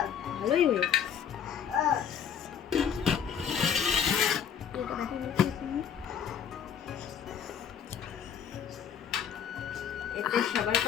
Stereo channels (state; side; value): quieter; right; 8.1 dB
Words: ভালোই ওয়েট। এতে সবার